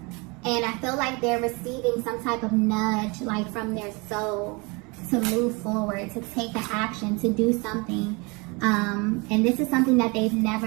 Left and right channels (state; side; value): quieter; left; 28.1 dB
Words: And I feel like they're receiving some type of nudge, like from their soul, to move forward, to take an action, to do something. And this is something that they've